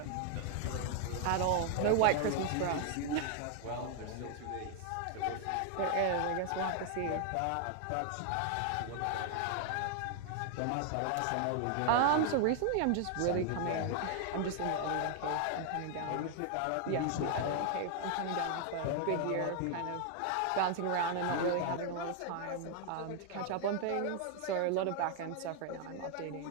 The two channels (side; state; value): both; different; correlation 0.00